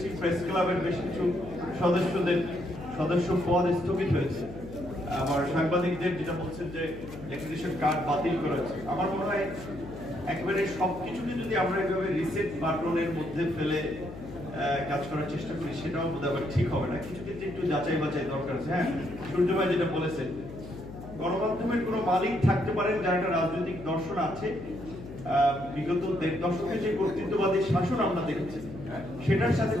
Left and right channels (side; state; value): left; noise; hum, 13 dB below the sound